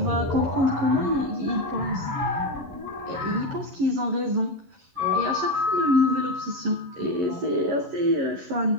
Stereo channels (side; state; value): left; late; 11 ms